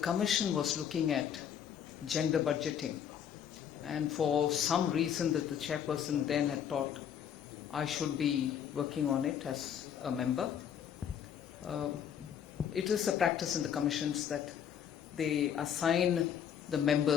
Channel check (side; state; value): right; quieter; 8.8 dB